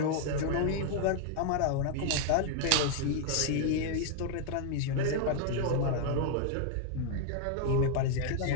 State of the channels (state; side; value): different; both; correlation 0.00